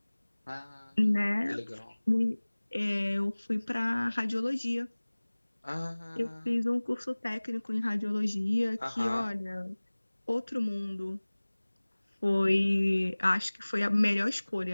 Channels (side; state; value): both; inverted; correlation -1.00